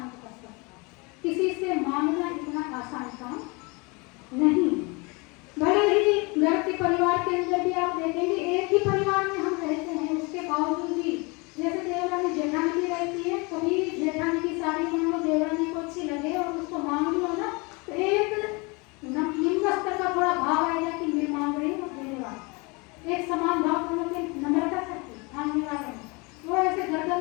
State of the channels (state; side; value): quieter; right; 28.3 dB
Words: कर सकता है। किसी से मांगना इतना आसान काम नहीं। भले ही घर के परिवार के अंदर भी आप देखेंगे, एक ही परिवार में हम रहते हैं, उसके बावजूद भी जैसे देवरानी जेठानी भी रहती है, कभी जेठानी की साड़ी मान लो देवरानी को अच्छी लगे और उसको मांग लो ना, तो एक निम्न स्तर का थोड़ा भाव आएगा कि मैं मांग रही हूँ, देने वाला एक समान भाव दोनों के नम्रता सकती मांगने वाले वो ऐसे